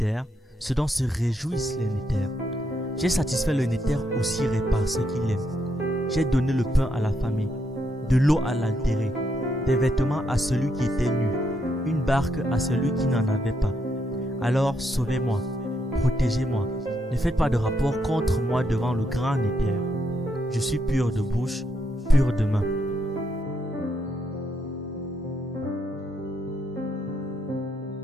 ce dont se réjouissent les Néther. J'ai satisfait le Néther aussi par ce qu'il aime. J'ai donné le pain à la famille, de l'eau à l'altéré, des vêtements à celui qui était nu, une barque à celui qui n'en avait pas. Alors sauvez-moi, protégez-moi, ne faites pas de rapport contre moi devant le grand Néther. Je suis pur de bouche, pur de main.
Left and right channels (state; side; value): normal; both; correlation 0.78